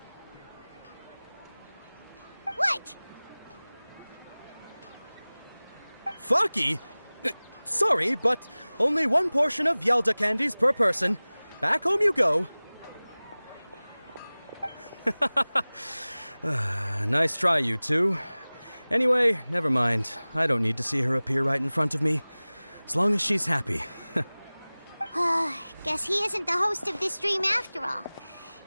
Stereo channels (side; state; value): both; inverted; correlation -0.99